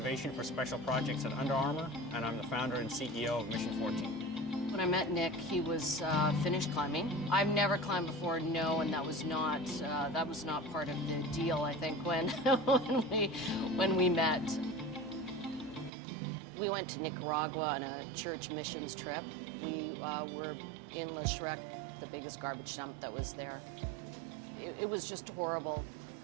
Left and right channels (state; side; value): drops out; left; at 15.9 s